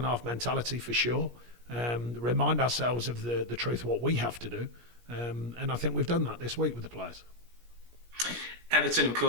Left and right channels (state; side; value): late; left; 17 ms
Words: half mentality for sure. Remind ourselves of the truth of what we have to do. And I think we've done that this week with the players. Everton, of